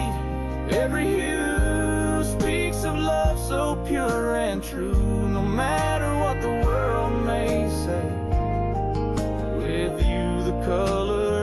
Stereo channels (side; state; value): both; identical; correlation 1.00